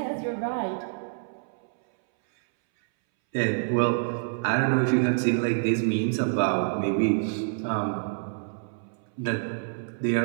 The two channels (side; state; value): left; silent; 60 dB below the other